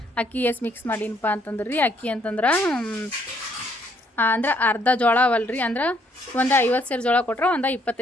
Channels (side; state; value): both; normal; correlation 0.68